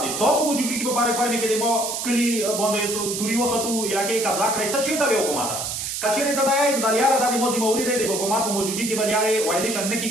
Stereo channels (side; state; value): right; noise; hiss, 4 dB below the sound